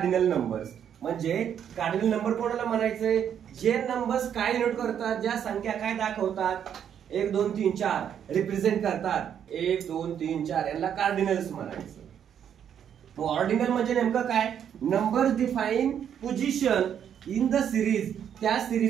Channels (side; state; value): left; quieter; 8.9 dB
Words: numbers. म्हणजे कार्डिनल नंबर कोणाला म्हणायचंय? जे नंबर्स काय डिनोट करतात, ज्या संख्या काय दाखवतात, 1 2 3 4 रिप्रेझेंट करतात, 1 2 3 4, यांना कार्डिनल्स म्हणायचं. ऑर्डिनल म्हणजे नेमकं काय? Numbers define position in the series. त्या